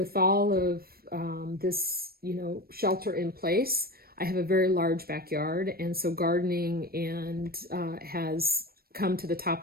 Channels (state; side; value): late; left; 0.44 ms